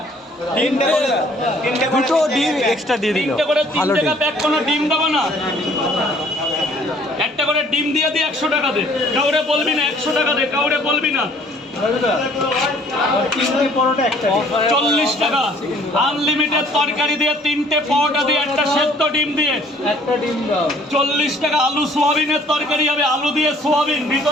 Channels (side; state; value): both; normal; correlation 0.58